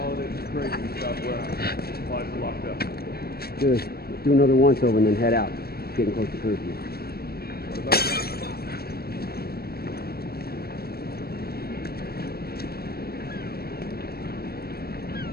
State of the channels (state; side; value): late; right; 0.45 ms